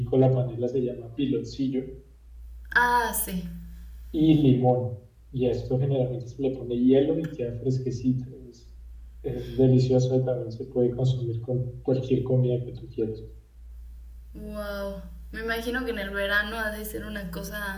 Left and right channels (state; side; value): identical; both; correlation 1.00